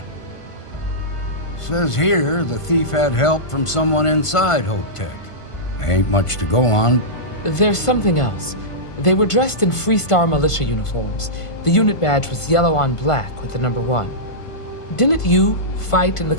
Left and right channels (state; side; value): late; right; 1.5 ms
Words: Says here the thief had help from someone inside Hope Tech. Ain't much to go on. There's something else. They were dressed in Freestar militia uniforms. The unit badge was yellow on black with the number 1. Didn't you fight in the